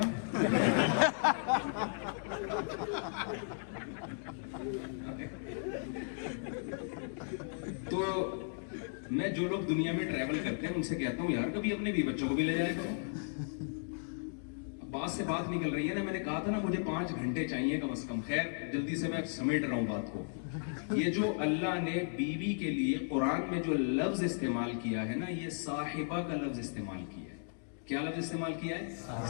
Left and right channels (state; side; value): silent; right; digital silence